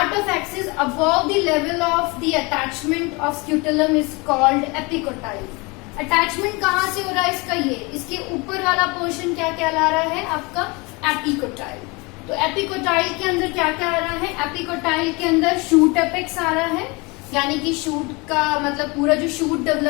of axis above the level of the attachment of scutellum is called epicotyl. Attachment कहाँ से हो रहा है इसका? ये इसके ऊपर वाला पोर्शन क्या कहला रहा है? आपका एपिकोटाइल। तो एपिकोटाइल के अंदर क्या क्या आ रहा है? एपिकोटाइल के अंदर शूट एपेक्स आ रहा है, यानी कि शूट का मतलब पूरा जो शूट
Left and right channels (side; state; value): right; quieter; 27.0 dB